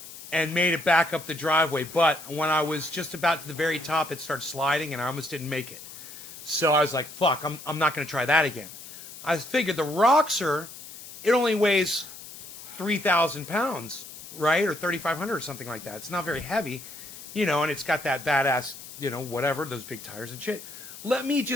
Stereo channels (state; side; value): noise; left; hiss, 14 dB below the sound